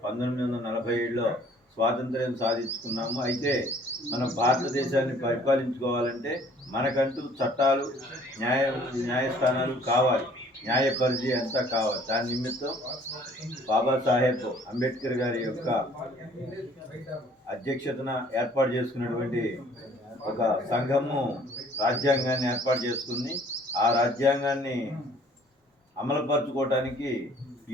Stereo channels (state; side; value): normal; both; correlation 0.56